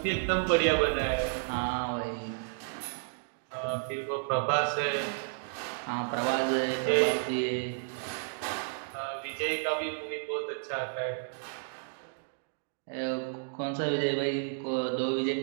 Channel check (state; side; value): silent; left; digital silence